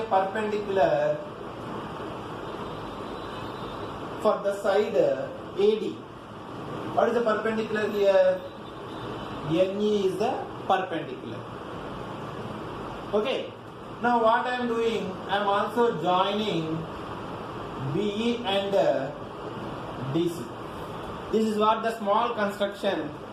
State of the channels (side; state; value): both; identical; correlation 1.00